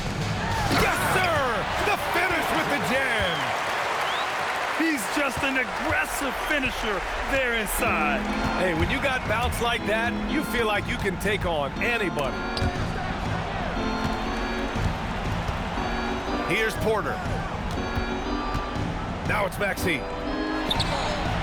Yes, sir! The finish with the jam! He's just an aggressive finisher there inside. Hey, when you got bounce like that, you feel like you can take on anybody. Here's Porter. Now it's Maxey.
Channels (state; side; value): identical; both; correlation 1.00